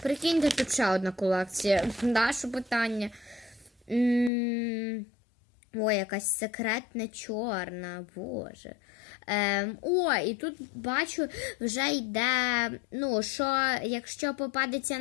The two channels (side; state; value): right; drops out; at 4.3 s